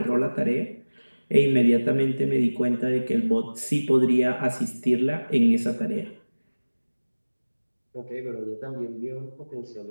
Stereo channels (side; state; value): both; inverted; correlation -1.00